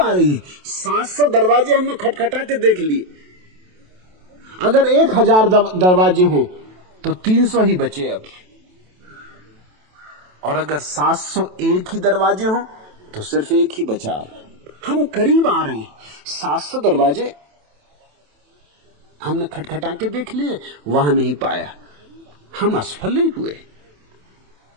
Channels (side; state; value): left; late; 27 ms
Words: रही है। 700 दरवाजे हमने खटखटा के देख लिए। अगर 1000 दरवाजे हों तो 300 ही बचे अब, और अगर 701 ही दरवाजे हों तो सिर्फ एक ही बचा। हम करीब आ रहे हैं। 700 दरवाजे हमने खटखटा के देख लिए, वहां नहीं पाया, हम असफल नहीं हुए।